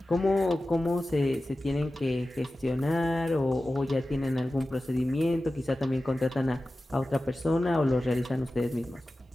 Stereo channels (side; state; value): both; normal; correlation 0.95